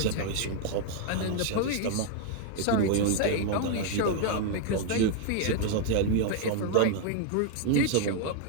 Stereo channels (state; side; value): different; both; correlation 0.00